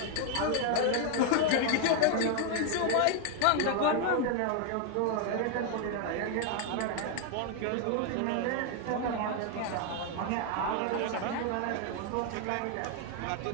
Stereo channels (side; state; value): both; different; correlation 0.01